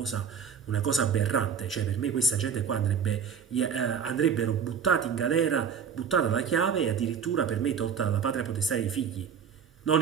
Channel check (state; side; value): quieter; left; 7.1 dB